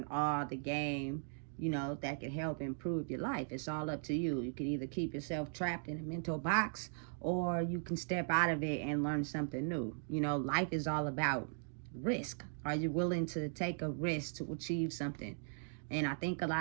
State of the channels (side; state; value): left; silent; digital silence